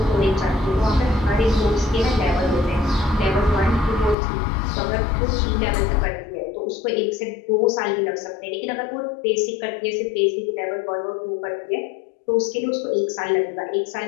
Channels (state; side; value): drops out; right; at 4.2 s